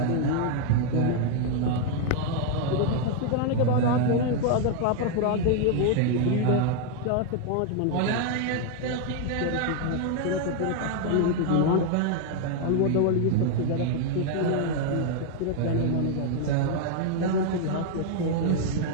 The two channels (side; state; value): both; different; correlation 0.00